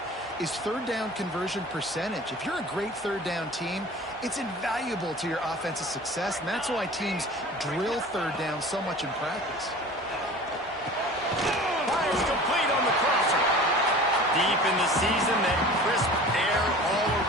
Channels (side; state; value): both; normal; correlation 0.41